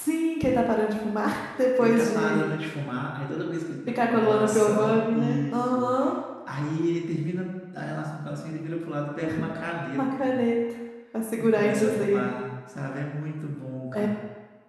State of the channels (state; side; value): identical; both; correlation 1.00